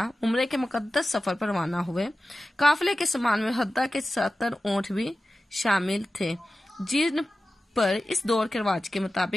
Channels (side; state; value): both; normal; correlation 0.95